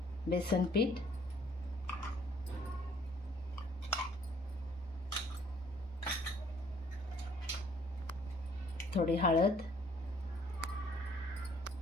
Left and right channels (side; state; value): both; normal; correlation 0.60